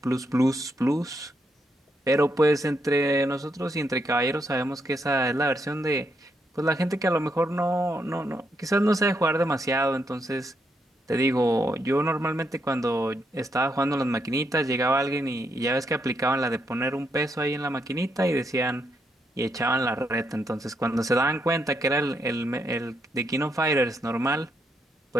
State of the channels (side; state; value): both; normal; correlation 0.78